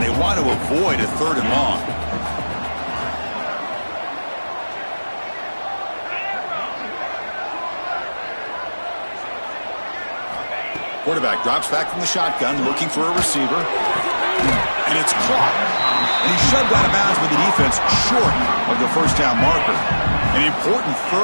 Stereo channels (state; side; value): inverted; both; correlation -1.00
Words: want to avoid a 3rd and long. Quarterback drops back from the shotgun, looking for a receiver. And it's caught. And he's shoved out of bounds with the defense short of the 1st down marker. An important